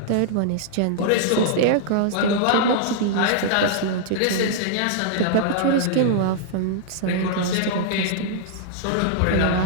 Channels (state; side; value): different; both; correlation -0.01